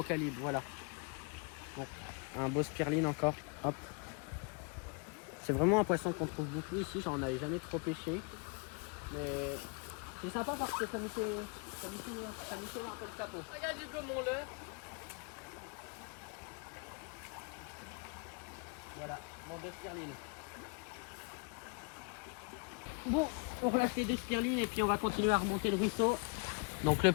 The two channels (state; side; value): quieter; right; 33.5 dB